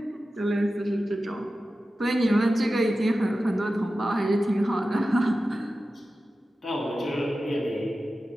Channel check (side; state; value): both; normal; correlation 0.93